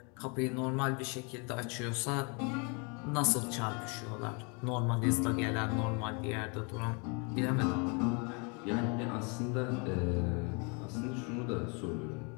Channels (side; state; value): right; quieter; 33.6 dB